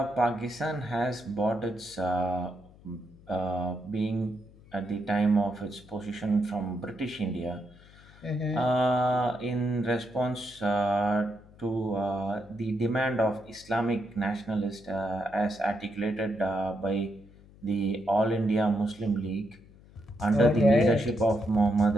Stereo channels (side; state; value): left; noise; hum, 24 dB below the sound